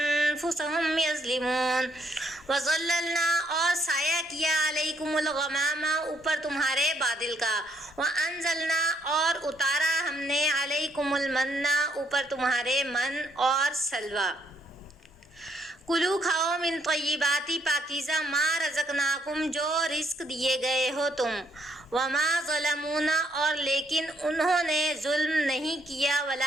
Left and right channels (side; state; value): both; normal; correlation 0.72